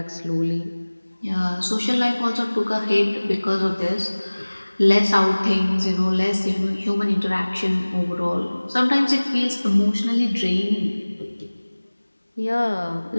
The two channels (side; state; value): both; inverted; correlation -1.00